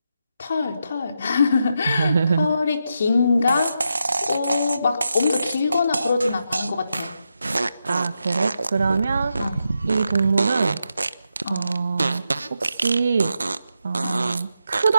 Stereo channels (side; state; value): both; inverted; correlation -0.85